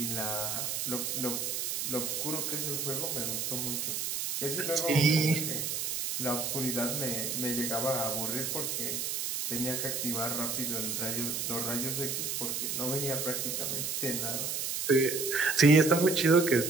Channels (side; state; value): right; noise; hiss, 2 dB below the sound